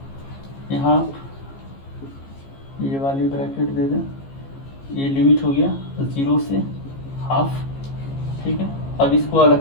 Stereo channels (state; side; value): late; right; 15 ms